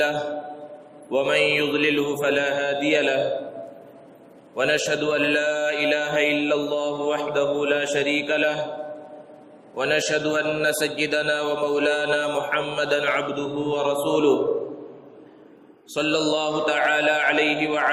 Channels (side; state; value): both; identical; correlation 1.00